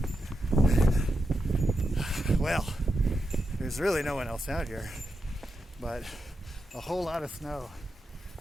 Well, there's really no one else out here, but a whole lot of snow.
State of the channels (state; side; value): normal; both; correlation 0.87